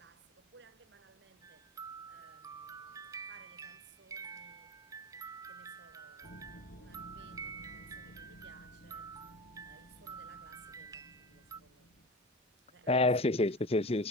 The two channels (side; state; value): both; normal; correlation 0.31